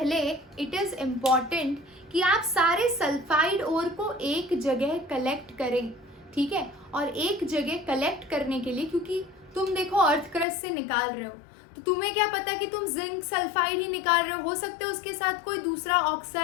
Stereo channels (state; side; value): drops out; right; at 10.5 s